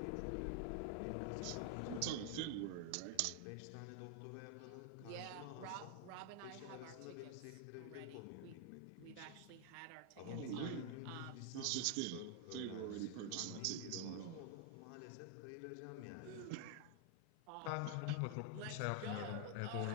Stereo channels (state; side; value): different; both; correlation 0.00